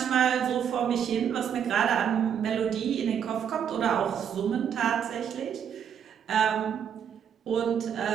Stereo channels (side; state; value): left; quieter; 8.4 dB